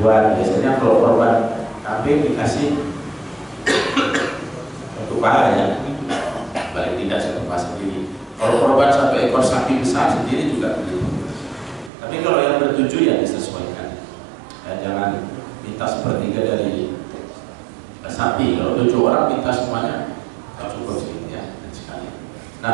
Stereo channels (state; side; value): drops out; left; at 11.9 s